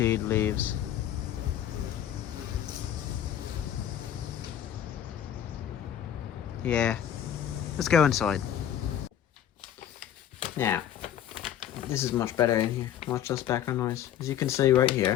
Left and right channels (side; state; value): right; quieter; 10.4 dB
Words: leaves. Yeah. Let's go inside. Now, this is much better in here. Much less background noise. As you can see right